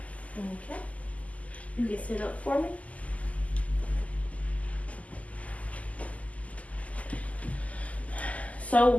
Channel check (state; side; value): late; right; 0.072 ms